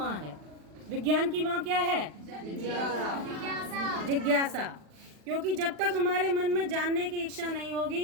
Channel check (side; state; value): left; late; 40 ms